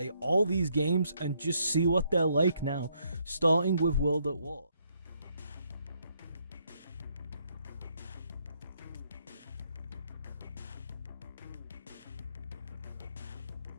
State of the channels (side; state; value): both; inverted; correlation -0.73